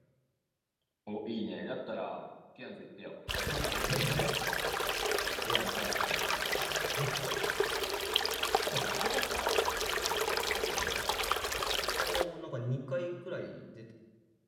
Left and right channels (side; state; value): both; identical; correlation 1.00